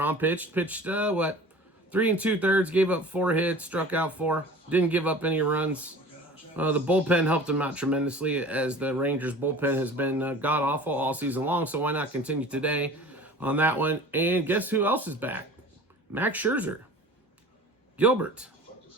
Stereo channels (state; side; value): normal; both; correlation 0.42